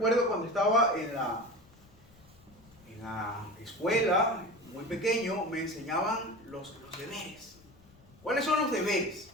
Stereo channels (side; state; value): left; noise; rumble, 26 dB below the sound